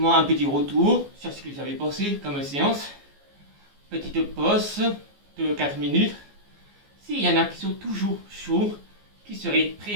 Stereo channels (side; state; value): left; late; 14 ms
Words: un petit retour sur ce que j'avais pensé comme séance. Petite pause de 4 minutes. S'il y en a qui sont toujours chauds, qui seraient